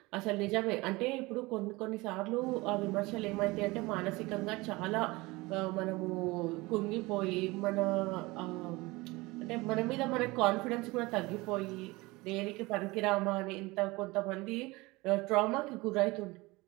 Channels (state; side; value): quieter; left; 22.5 dB